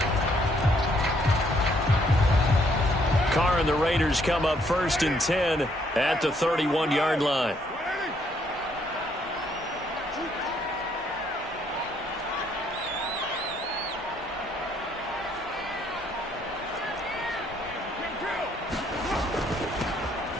Carr and the Raiders come up 1st and 10 at the 31-yard line.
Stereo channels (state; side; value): normal; both; correlation 0.69